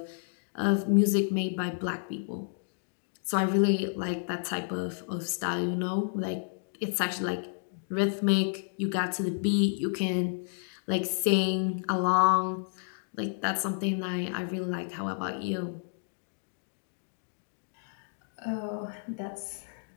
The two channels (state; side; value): silent; right; digital silence